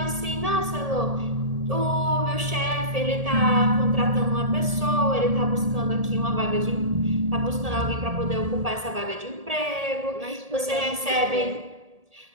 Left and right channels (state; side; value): late; left; 1.7 ms